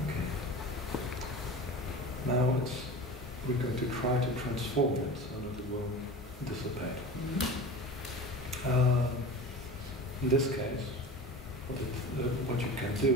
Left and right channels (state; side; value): normal; both; correlation 0.33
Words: Okay. Now we're going to try to transform it so that it will dissipate. In this case, what you can